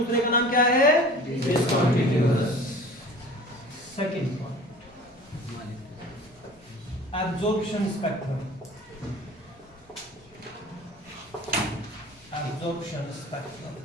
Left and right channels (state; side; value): normal; both; correlation 0.42